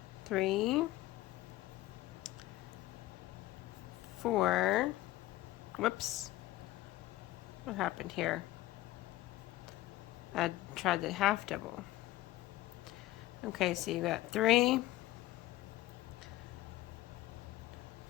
3, 4, whoops, what happened here? I tried the half double. Okay, so you got 3,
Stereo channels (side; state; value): right; quieter; 16.8 dB